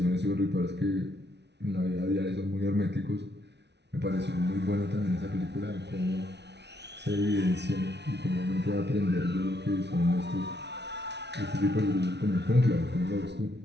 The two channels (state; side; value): late; left; 0.50 ms